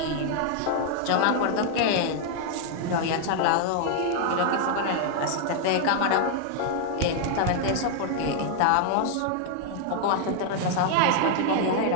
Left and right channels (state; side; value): different; both; correlation 0.00